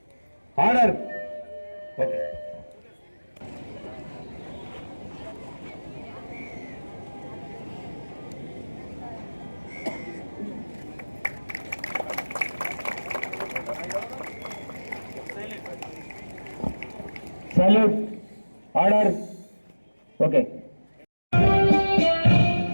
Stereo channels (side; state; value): both; inverted; correlation -1.00